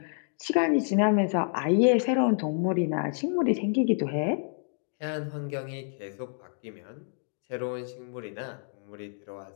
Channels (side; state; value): right; silent; 59 dB below the other